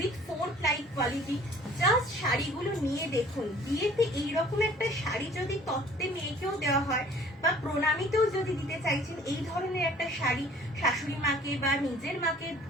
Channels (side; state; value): both; normal; correlation 0.52